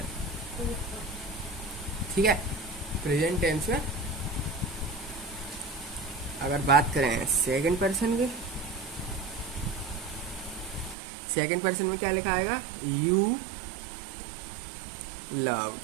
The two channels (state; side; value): drops out; left; at 11.0 s